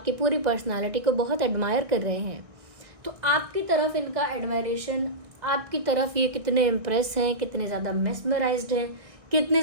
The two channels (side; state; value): left; late; 1.6 ms